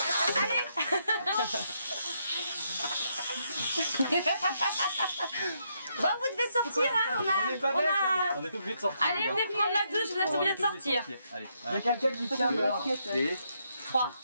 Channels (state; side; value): inverted; both; correlation -0.77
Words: Allez. Bon, vous devez sortir, hein. On est obligé de sortir. Allez, venez prendre la douche, vous êtes obligés de sortir. Allez. Il y a quelqu'un qui tient le basket. Et 3.